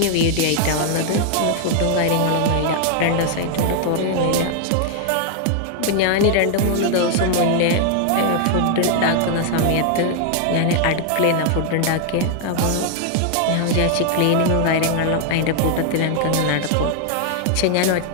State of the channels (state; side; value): different; both; correlation 0.00